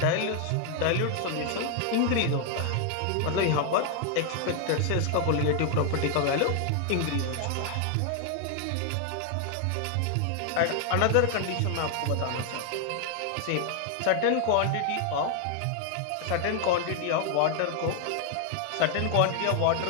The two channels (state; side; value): different; both; correlation 0.00